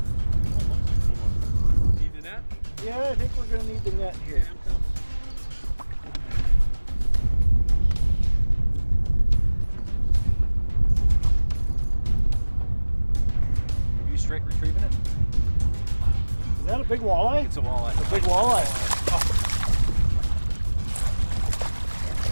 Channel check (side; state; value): both; inverted; correlation -1.00